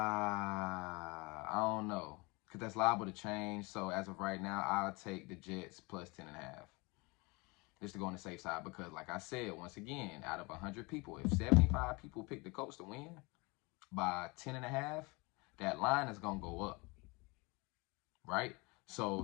don't know, because that's liable to change. So as of right now, I'll take the Jets plus 10.5. Just to go on the safe side, because like I said, once again, out of 100 people, if 75 people pick the Colts to win by 10.5, that line is going to go up, right? So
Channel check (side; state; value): right; quieter; 26.8 dB